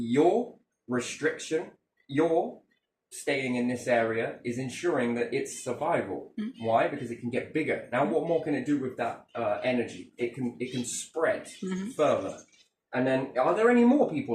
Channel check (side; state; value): both; identical; correlation 1.00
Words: restriction, your staying in this area is ensuring that it's survival. Why? Because it can get bigger. Now, what more can it do with that energy? It can spread further. And then, are there any more